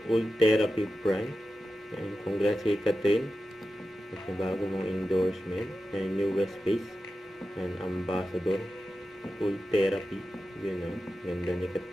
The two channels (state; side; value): normal; both; correlation 0.92